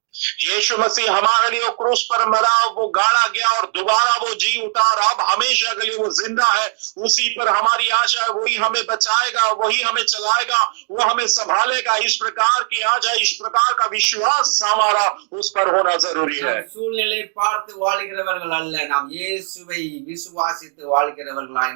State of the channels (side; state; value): left; silent; 67 dB below the other